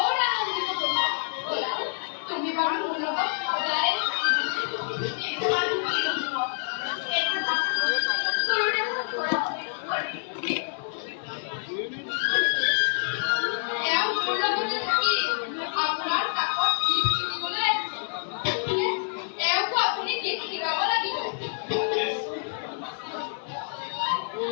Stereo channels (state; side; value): silent; right; digital silence